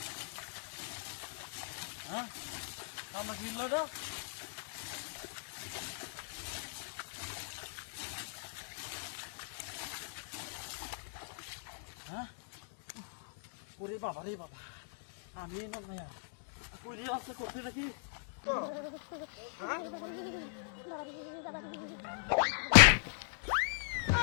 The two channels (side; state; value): right; silent; digital silence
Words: হ্যাঁ আমরা ফিরল তো হ্যাঁ ওরে বাবা রে বাবা, আমি না কইরে আসতে করতে নাকি